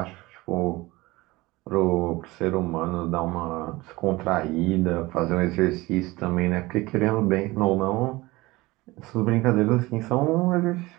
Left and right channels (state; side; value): quieter; left; 20.8 dB